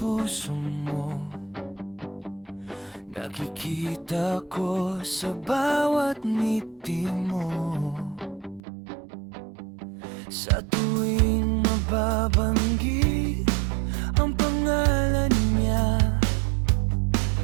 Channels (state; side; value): drops out; left; at 8.6 s